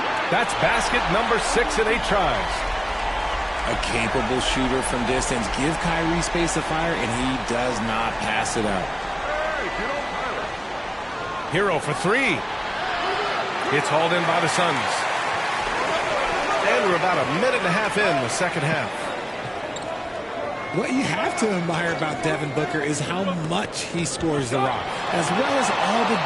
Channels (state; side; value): identical; both; correlation 1.00